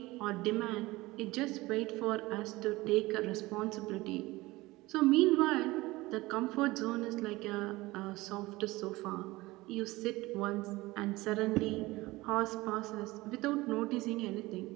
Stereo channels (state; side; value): quieter; left; 20.1 dB